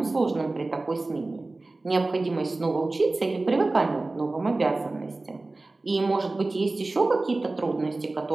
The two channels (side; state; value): left; quieter; 3.1 dB